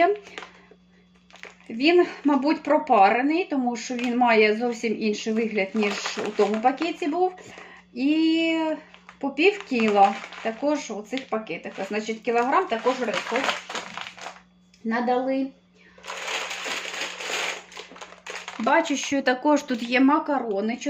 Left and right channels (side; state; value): both; identical; correlation 1.00